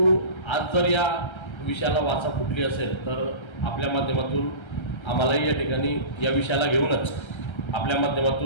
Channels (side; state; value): right; late; 1.3 ms